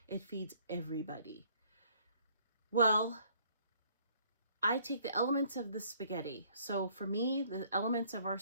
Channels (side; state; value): both; inverted; correlation -0.61